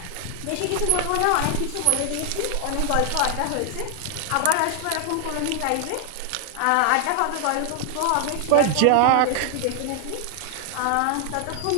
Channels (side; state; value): both; different; correlation 0.00